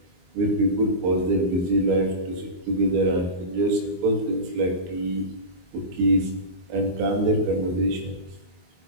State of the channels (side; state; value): left; late; 22 ms